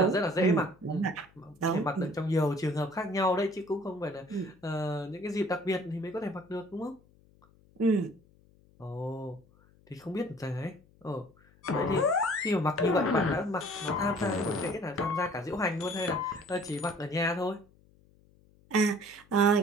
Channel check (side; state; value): left; noise; hum, 29 dB below the sound